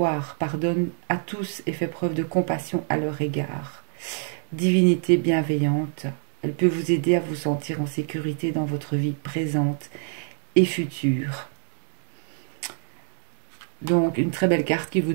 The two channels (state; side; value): silent; left; 59 dB below the other